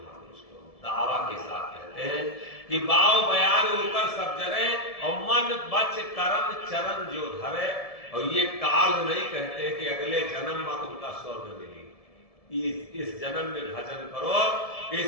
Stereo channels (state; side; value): late; right; 1.7 ms